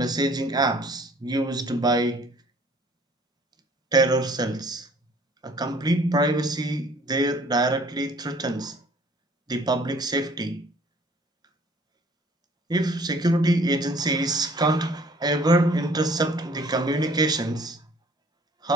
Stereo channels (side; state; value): both; normal; correlation 0.55